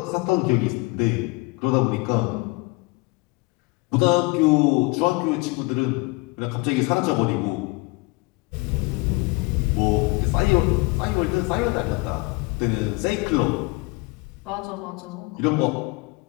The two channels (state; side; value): quieter; right; 25.5 dB